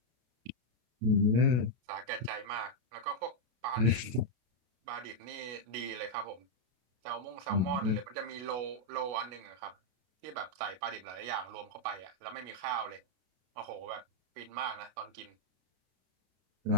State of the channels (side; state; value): left; late; 33 ms